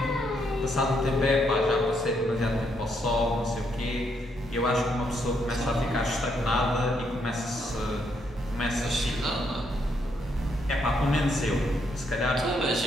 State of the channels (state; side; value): normal; both; correlation 0.75